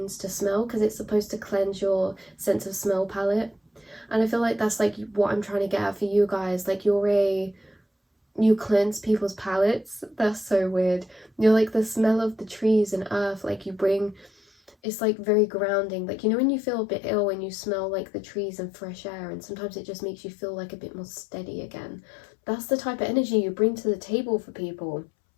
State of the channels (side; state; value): right; drops out; at 14.8 s